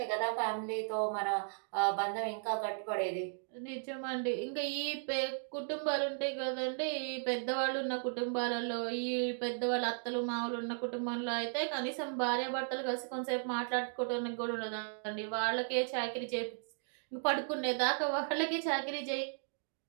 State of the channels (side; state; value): left; silent; digital silence